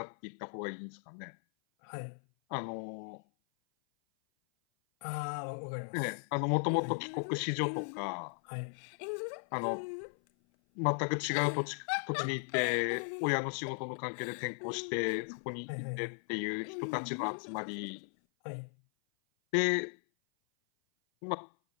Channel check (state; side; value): silent; right; 53 dB below the other